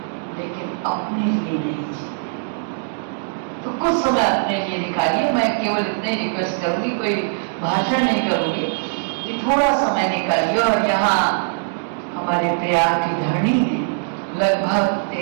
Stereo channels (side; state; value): left; silent; digital silence